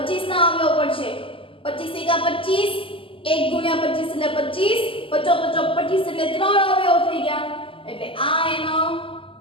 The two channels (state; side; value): late; right; 0.25 ms